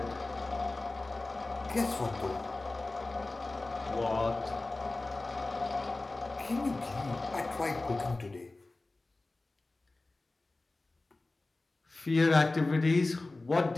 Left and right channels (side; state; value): right; quieter; 3.1 dB